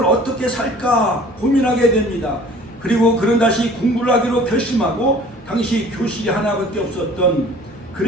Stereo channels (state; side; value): normal; both; correlation 0.49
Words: 어떻게 살까 고민하게 됩니다. 그리고 그는 다시 공부를 하기로 결심하고 당시 교실이 하나밖에 없었던